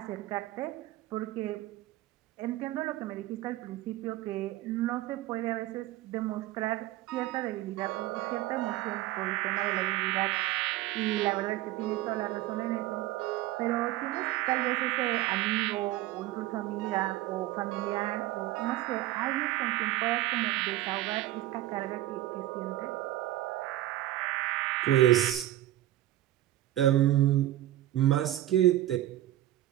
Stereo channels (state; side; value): quieter; left; 14.9 dB